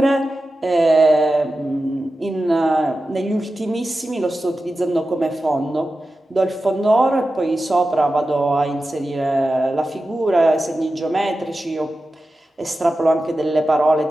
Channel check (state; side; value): normal; both; correlation 0.93